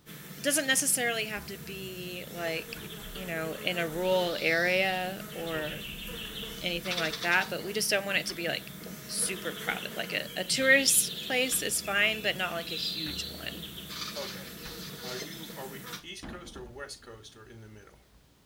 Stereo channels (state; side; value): identical; both; correlation 1.00